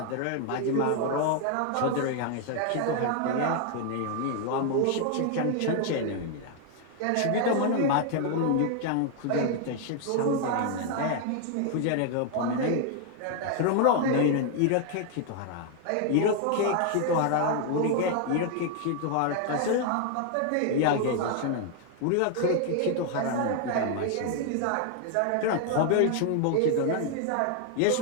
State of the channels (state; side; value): different; both; correlation 0.00